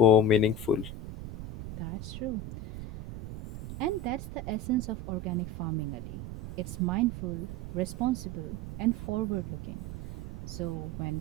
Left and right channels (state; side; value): noise; right; rumble, 9 dB below the sound